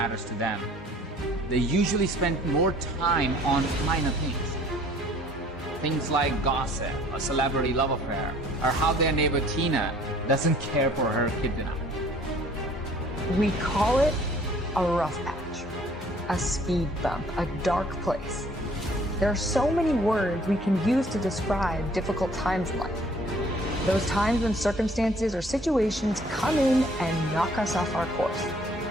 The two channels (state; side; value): normal; both; correlation 0.56